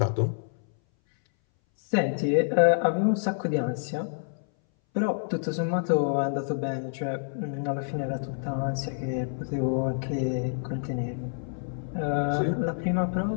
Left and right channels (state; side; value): silent; right; 59 dB below the other